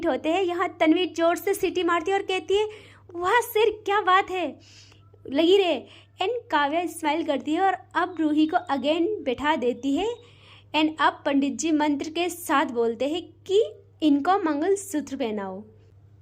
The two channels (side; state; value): both; identical; correlation 1.00